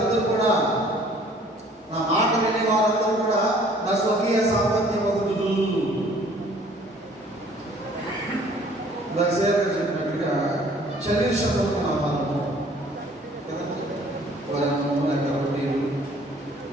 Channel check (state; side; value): normal; both; correlation 0.55